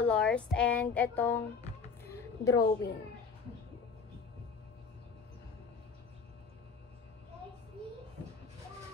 and etong drawing.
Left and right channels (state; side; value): quieter; right; 5.4 dB